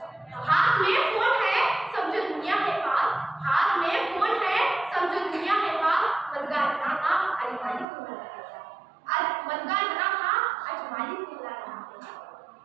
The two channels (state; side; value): drops out; left; at 7.9 s